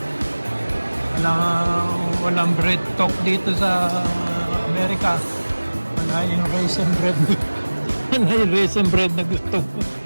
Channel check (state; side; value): inverted; both; correlation -1.00